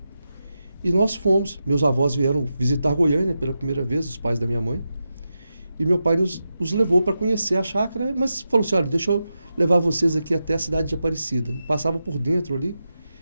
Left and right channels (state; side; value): inverted; both; correlation -0.89